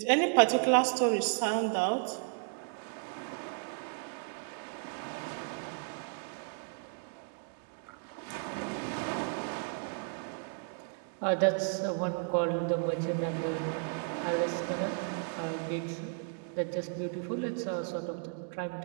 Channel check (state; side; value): silent; left; 55 dB below the other